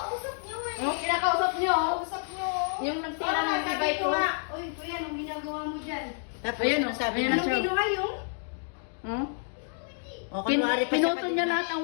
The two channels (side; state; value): right; silent; 59 dB below the other